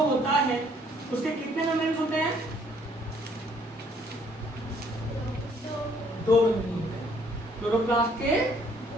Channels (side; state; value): both; normal; correlation 0.63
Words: होता है उसके कितने मेम्ब्रेन्स होते हैं? 2 मेम्ब्रेन होते हैं। क्लोरोप्लास्ट के